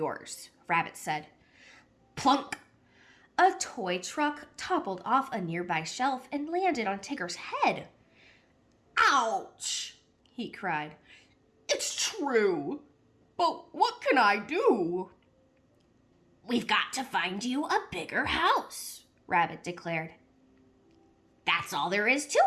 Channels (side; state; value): both; identical; correlation 1.00